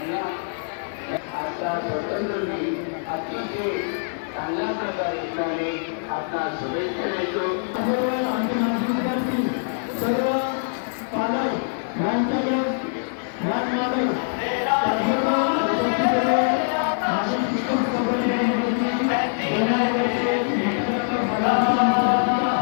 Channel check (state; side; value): silent; right; 63 dB below the other